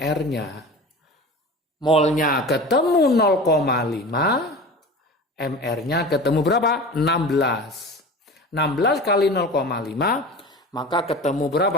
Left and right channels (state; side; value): normal; both; correlation 0.34